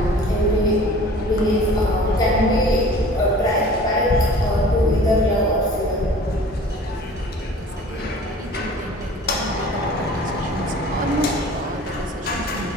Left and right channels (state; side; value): normal; both; correlation 0.46